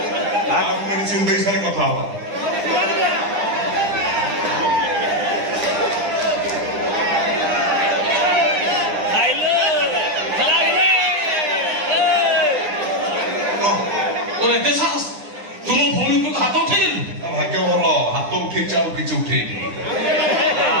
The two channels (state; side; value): late; left; 9.9 ms